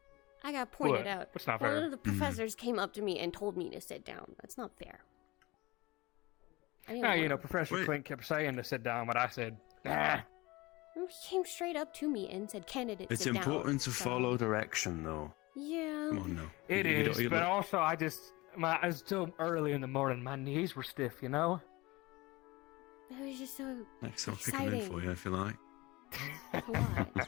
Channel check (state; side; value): quieter; right; 21.9 dB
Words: I got pointed What? out. What's not One fair? of the professors came up to me and told me to sit down. That's not fair. I didn't Yeah, you wanna- know, Professor Clint kept saying to sit down, but I said, nah. He came straight up to me and said, candidate, It's sit down. important to So- follow direction, though. Yeah. Come on now. It You is, don't- you but look- also it's still early in the morning. My knees were stiff, you know? It was just so Next, I'll pick them in exciting. for you if you like. What?